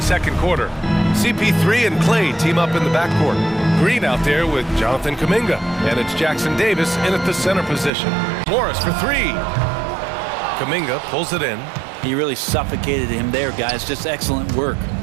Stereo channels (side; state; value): left; drops out; at 7.9 s